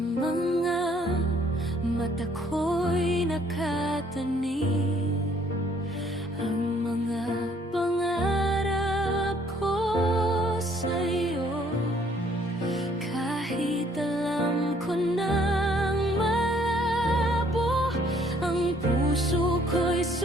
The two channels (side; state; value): both; normal; correlation 0.63